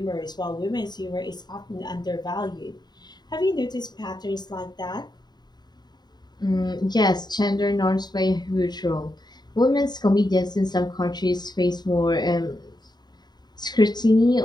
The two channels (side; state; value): right; late; 0.20 ms